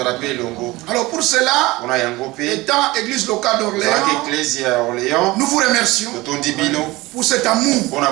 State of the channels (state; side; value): quieter; left; 20.5 dB